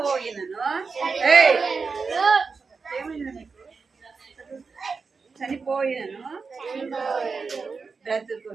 ఏమైంది నీకు? చనిపోయినను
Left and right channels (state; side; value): quieter; left; 4.8 dB